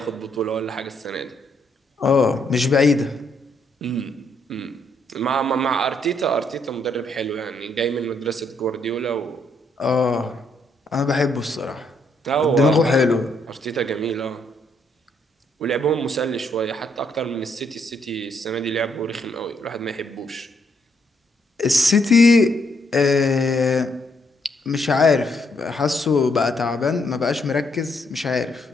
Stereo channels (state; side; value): normal; both; correlation 0.74